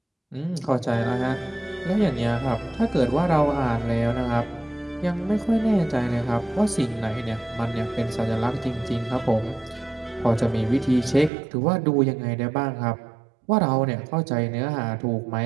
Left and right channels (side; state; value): left; drops out; at 11.3 s